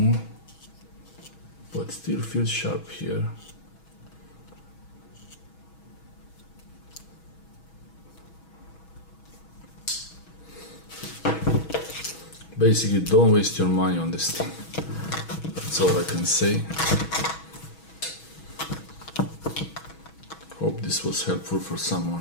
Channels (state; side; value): late; right; 6.2 ms